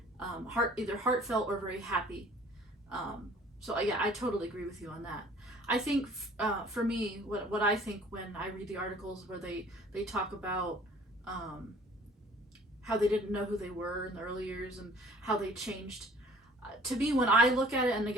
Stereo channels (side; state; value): both; normal; correlation 0.52